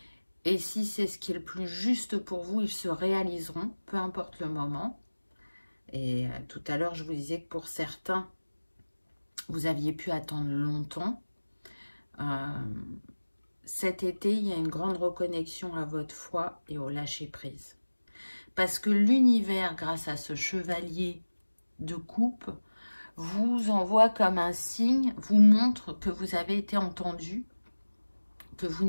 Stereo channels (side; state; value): both; inverted; correlation -1.00